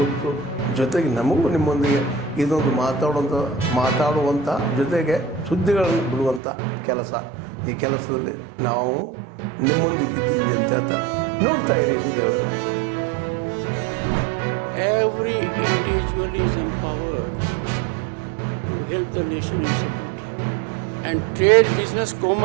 ಗೊತ್ತು. ಜೊತೆಗೆ ನಮಗೂ ನಿಮ್ಮೊಂದಿಗೆ ಇದೊಂದು ಮಾತಾಡುವಂಥ ಜೊತೆಗೆ ಸುದ್ದಿಗಳನ್ನು ಬಿಡುವಂಥ ಕೆಲಸ. ಈ ಕೆಲಸದಲ್ಲಿ ನಾವು ನಿಮ್ಮೊಂದಿಗೆ ಇದ್ದೀವಿ ಅಂತ ಹೇಳ್ತಾ ನೋಡ್ತಾ ಇರಿ ಸುದ್ದಿಗಳನ್ನು. Every individual is empowered to help the nation in security. And trade, business,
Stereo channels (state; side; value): drops out; left; at 6.4 s